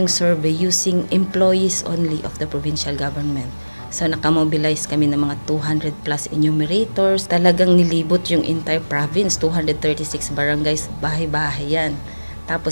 survey using employees only of the provincial government. So nakamobilize kami ng mga 200 plus enumerators. Talagang nilibot yung entire province, 236 barangays, bahay-bahay yan.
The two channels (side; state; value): both; inverted; correlation -1.00